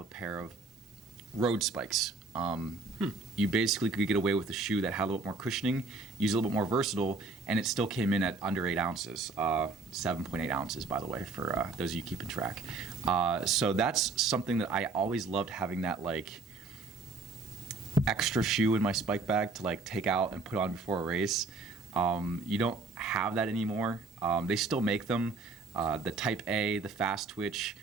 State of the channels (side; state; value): left; quieter; 3.8 dB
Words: pair of road spikes. You basically could get away with a shoe that had a little bit more cushioning, use a little bit more versatile, and it still came in at under 8 ounces, 7.8 ounces, by the way, for those of you keeping track. So that's something that I always loved, having that like extra shoe in my spike bag to like take out and put on before a race. You don't have that anymore. They still make them. The Type A, the Fast Twitch,